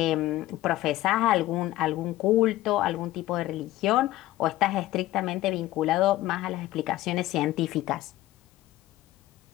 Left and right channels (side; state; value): right; quieter; 15.8 dB